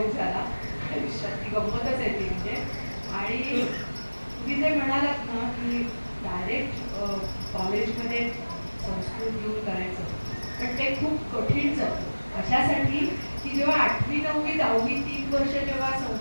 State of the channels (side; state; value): both; inverted; correlation -1.00